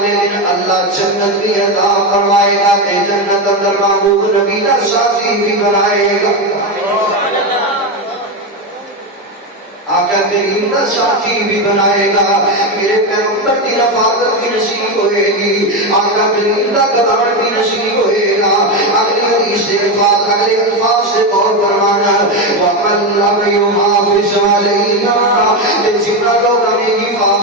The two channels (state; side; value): normal; both; correlation 0.12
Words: دن اللہ جنت کی عطا فرمائے گا کہ جنت اندر محبوب نبی کا ساتھی بھی بنائے گا. آقا کریم کا ساتھی بھی بنائے گا, میرے پیغمبر کی رفاقت بھی نصیب ہوئے گی, آقا کریم کا قدر بھی نصیب ہوئے گا. اگلی حدیث سے اگلے الفاظ سے غور فرمانا, وَمَنْ لَمْ يُحَافِظْ عَلَيْهَا, جتنا لوگ ہمیں